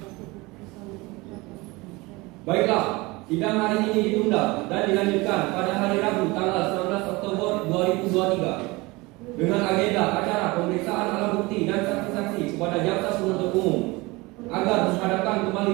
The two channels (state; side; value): quieter; left; 23.2 dB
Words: Baiklah, sidang hari ini ditunda dan dilanjutkan pada hari Rabu tanggal 19 Oktober 2023 dengan agenda acara pemeriksaan alat bukti dan saksi-saksi kepada jaksa penuntut umum agar menghadapkan